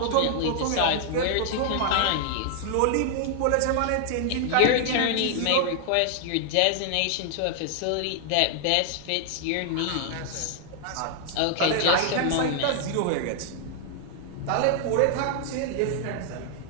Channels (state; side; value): different; both; correlation 0.00